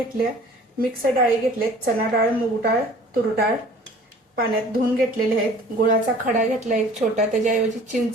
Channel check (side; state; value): both; normal; correlation 0.49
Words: मिक्स डाळी घेतलेत, चना डाळ, मूग डाळ, तूर डाळ पाण्यात धुवून घेतलेले आहेत। गुळाचा खडा घेतला एक छोटा, त्याच्याऐवजी चिंच